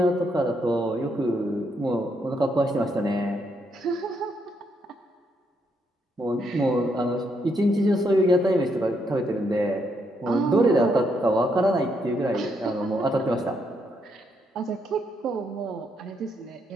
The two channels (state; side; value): normal; both; correlation 0.77